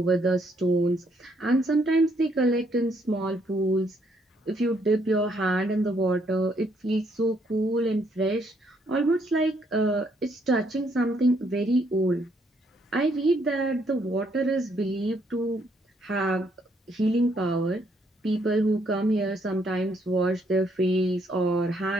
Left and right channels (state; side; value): normal; both; correlation 0.71